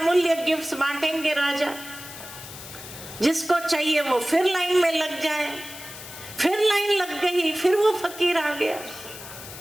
गिफ्ट्स बांटेंगे राजा, जिसको चाहिए वो फिर लाइन में लग जाए। फिर लाइन लग गई, फिर वो फकीर आ गया।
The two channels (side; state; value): left; noise; hiss, 13 dB below the sound